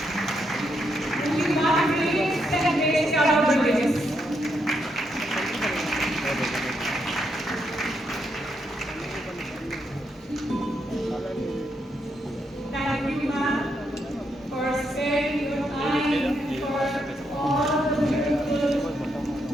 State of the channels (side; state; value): both; normal; correlation 0.79